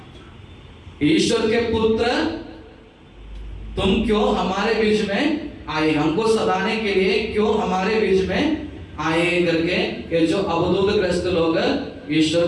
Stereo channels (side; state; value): both; identical; correlation 1.00